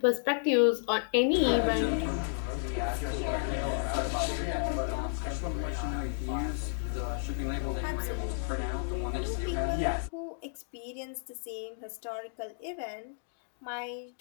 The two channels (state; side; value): silent; right; digital silence